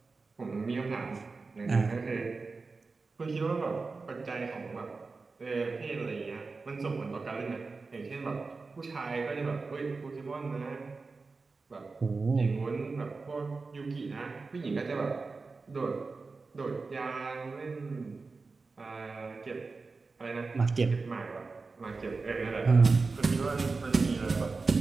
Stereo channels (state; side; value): quieter; left; 4.1 dB